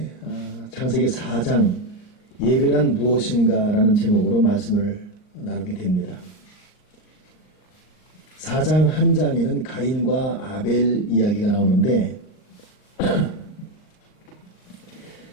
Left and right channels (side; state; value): right; late; 39 ms